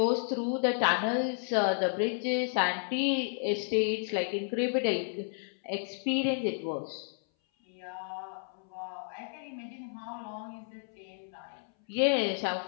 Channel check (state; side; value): silent; right; 56 dB below the other